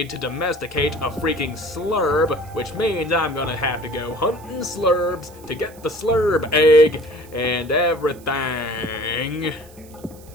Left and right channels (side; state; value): right; noise; hiss, 24 dB below the sound